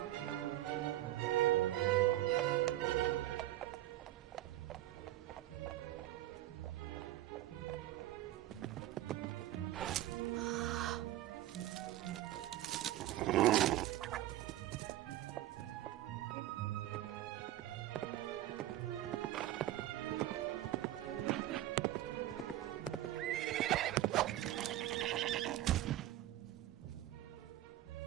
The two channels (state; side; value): quieter; left; 14.5 dB